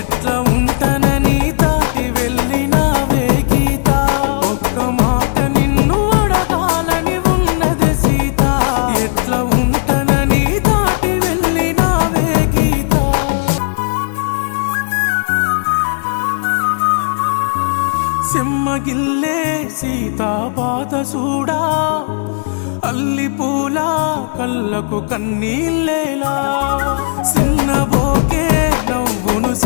ఉంటానని దాటి వెళ్ళినావే గీత. ఒక్క మాట నిన్ను అడగాలని ఉన్నది సీత, ఎట్లా ఉంటానని దాటి వెళ్ళినావే గీత. సెమ్మగిల్లే సీతా పాత సూడా, అల్లి పూల కళ్ళకు కన్నీళ్ళేలా. సిన్నబోకే నవ్వును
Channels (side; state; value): right; silent; 68 dB below the other